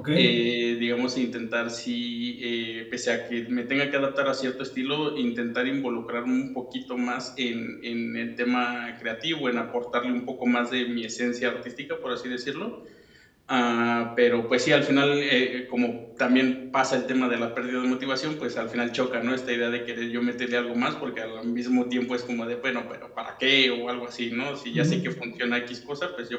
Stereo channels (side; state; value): both; identical; correlation 1.00